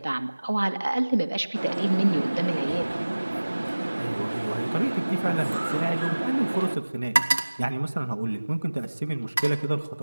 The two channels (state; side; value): inverted; both; correlation -1.00